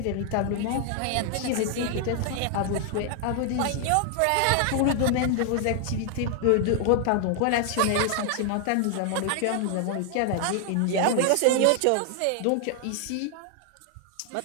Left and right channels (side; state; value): both; different; correlation 0.00